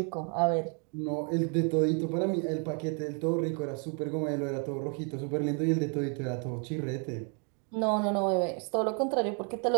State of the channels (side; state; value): left; quieter; 38.9 dB